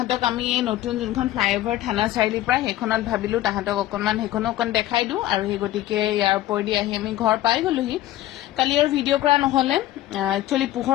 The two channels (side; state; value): right; quieter; 14.6 dB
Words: আমি এই নতুন যোনখন ফ্লাইঅভাৰ থানা চাৰিআলিৰ পৰা সেইখনত ভাবিলো তাহাঁতক অকণমান সেইখনো অকণ দেখাই দিওঁ আৰু সেই গতিকে ইয়াৰ ওপৰেদি আহি আমি ঘৰ পাই গলোহি কালি আৰু ভিডিঅ' কৰা নহ'লে একচুৱেলি